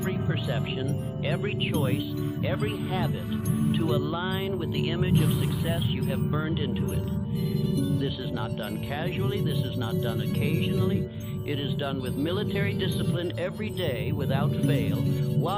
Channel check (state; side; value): identical; both; correlation 1.00